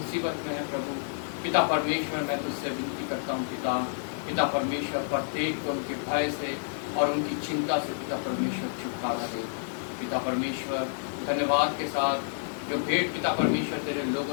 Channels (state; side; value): silent; right; digital silence